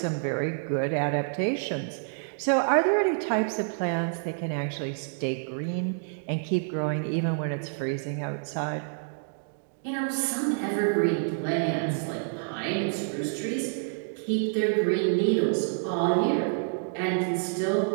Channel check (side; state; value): left; silent; digital silence